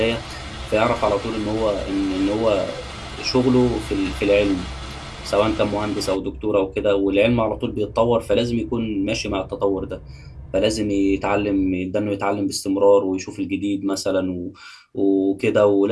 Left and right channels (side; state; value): both; identical; correlation 1.00